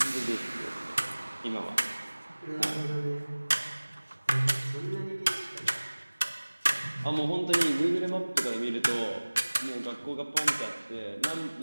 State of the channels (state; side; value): inverted; both; correlation -1.00